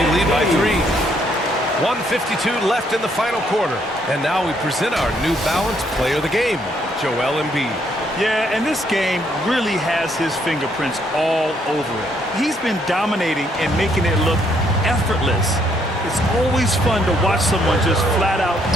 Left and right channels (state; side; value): normal; both; correlation 0.71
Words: lead by 3. 1:52 left in the final quarter. And now we present our New Balance player of the game, Joel Embiid. Yeah, and this game really has his fingerprints all over it. He's been dominating and making it look effortless. It's always fun to watch someone just flat out